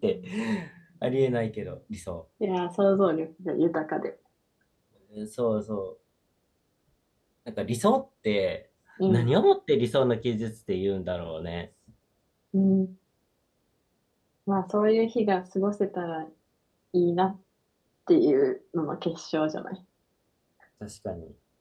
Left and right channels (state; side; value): identical; both; correlation 1.00